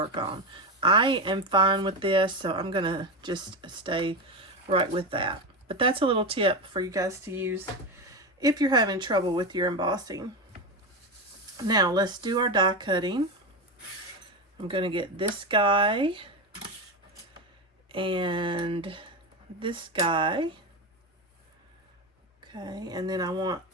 on. I am fine with this, so I'm going to just stay right with that. But that's a little tip for you guys to use if you're having trouble with your embossing. Now let's do our die cutting. I'm going to get this guy and this guy. Okay, and then I want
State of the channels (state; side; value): normal; both; correlation 0.16